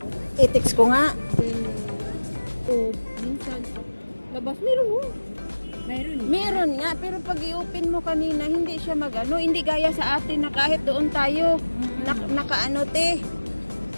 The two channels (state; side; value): inverted; both; correlation -1.00